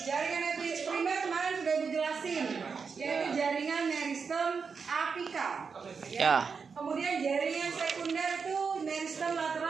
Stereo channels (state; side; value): quieter; left; 5.5 dB